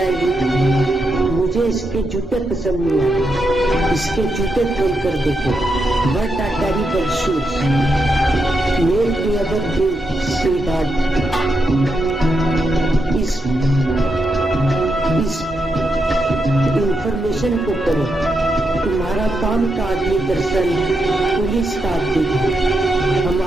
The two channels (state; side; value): normal; both; correlation 0.84